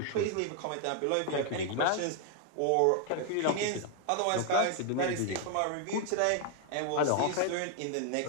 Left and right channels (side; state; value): both; different; correlation 0.00